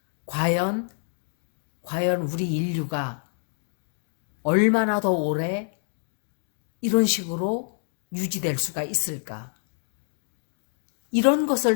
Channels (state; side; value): silent; right; digital silence